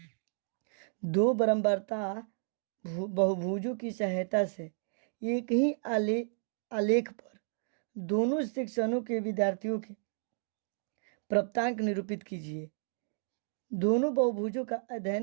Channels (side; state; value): left; silent; digital silence